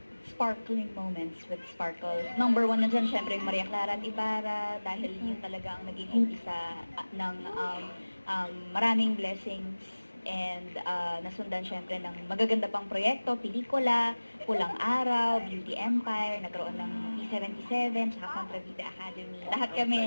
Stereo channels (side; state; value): both; inverted; correlation -1.00